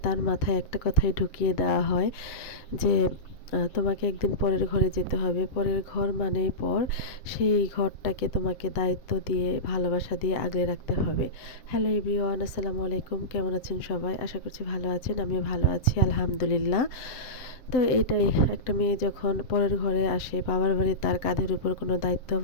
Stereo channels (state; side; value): late; right; 7.3 ms